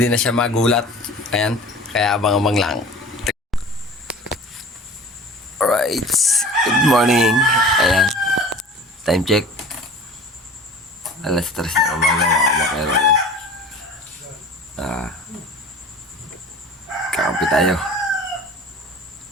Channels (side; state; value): both; normal; correlation 0.41